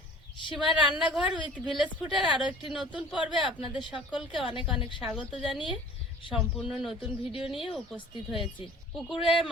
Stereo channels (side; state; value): both; normal; correlation 0.46